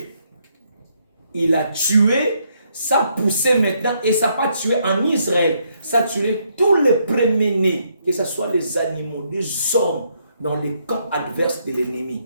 Il a tué, ça a poussé maintenant, et ça n'a pas tué en Israël, ça a tué tous les premiers-nés, que ce soit les animaux, des hommes, dans les camps adverses de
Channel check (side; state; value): both; inverted; correlation -0.74